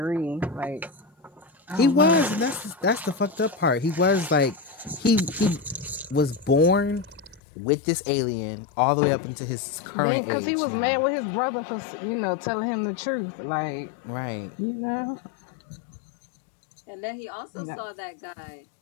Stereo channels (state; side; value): drops out; right; at 7.4 s